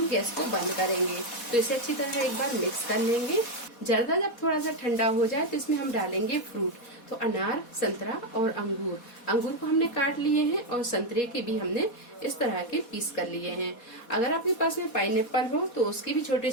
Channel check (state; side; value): late; right; 4.2 ms